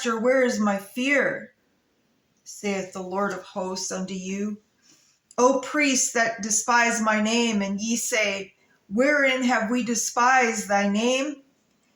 where is my fear? Saith the Lord of hosts unto you. O priests that despise my name, and ye say, wherein have we despised thy name?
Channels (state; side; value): identical; both; correlation 1.00